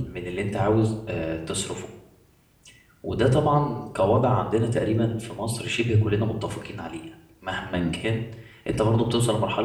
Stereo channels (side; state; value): both; identical; correlation 1.00